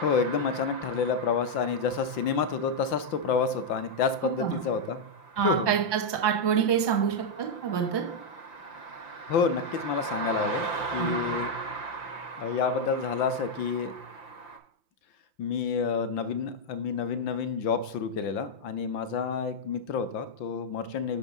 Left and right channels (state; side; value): late; right; 5.8 ms